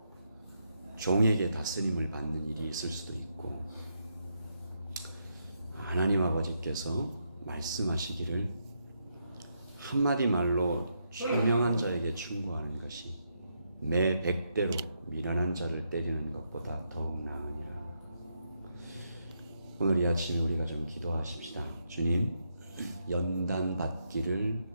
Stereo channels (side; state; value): both; inverted; correlation -0.80